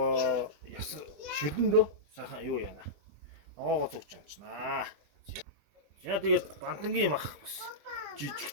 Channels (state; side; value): late; left; 20 ms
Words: яс шүлэндөө сайхан юу яана. Ногоогоо зүгч чамчнаа. За тэгээд бантангийн мах бас